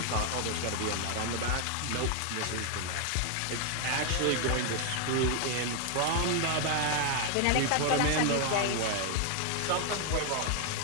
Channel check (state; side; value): different; both; correlation 0.00